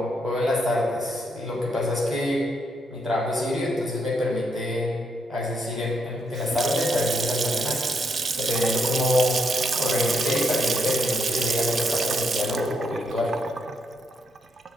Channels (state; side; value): normal; both; correlation 0.77